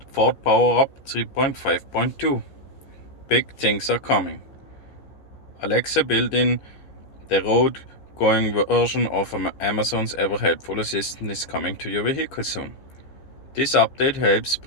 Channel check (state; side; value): late; right; 15 ms